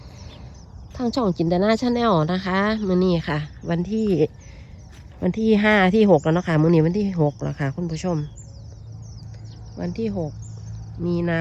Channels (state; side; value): identical; both; correlation 1.00